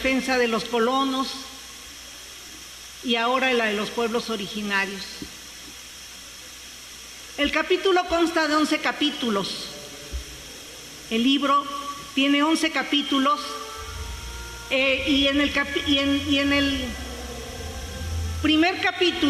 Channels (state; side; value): identical; both; correlation 1.00